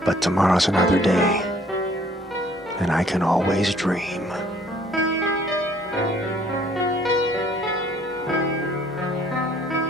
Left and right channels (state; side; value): normal; both; correlation 0.59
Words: But tomorrow's another day, and I can always dream.